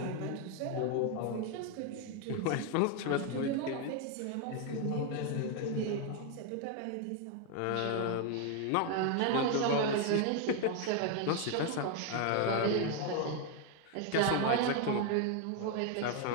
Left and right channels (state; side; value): different; both; correlation 0.01